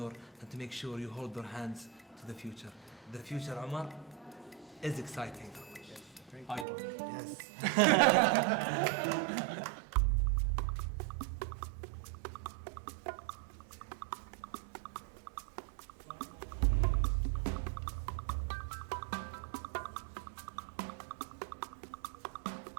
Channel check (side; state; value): left; drops out; at 6.7 s